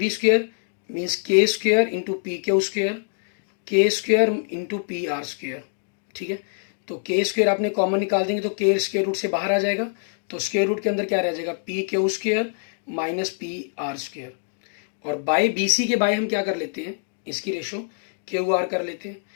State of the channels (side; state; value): right; silent; digital silence